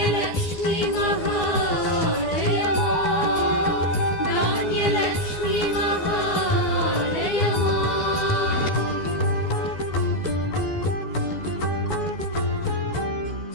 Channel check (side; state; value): right; late; 12 ms